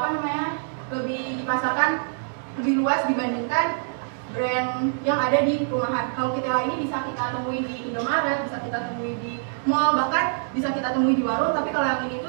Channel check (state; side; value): silent; left; digital silence